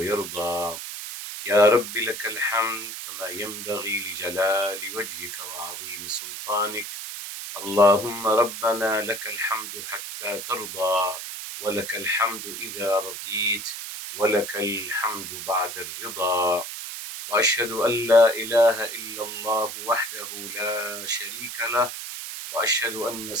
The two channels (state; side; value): noise; right; hiss, 8 dB below the sound